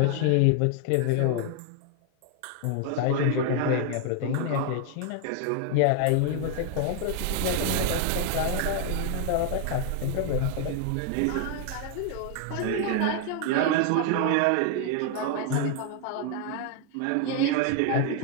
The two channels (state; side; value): different; both; correlation 0.00